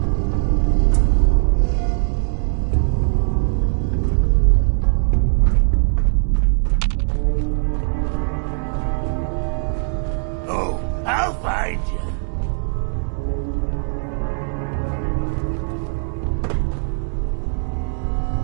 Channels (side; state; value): left; silent; digital silence